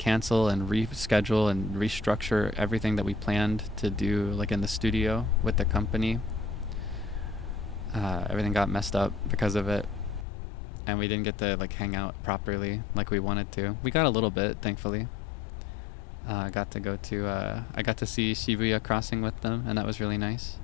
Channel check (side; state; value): right; drops out; at 10.2 s